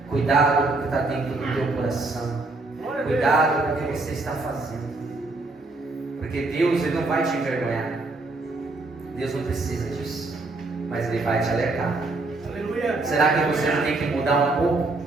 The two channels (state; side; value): quieter; left; 3.2 dB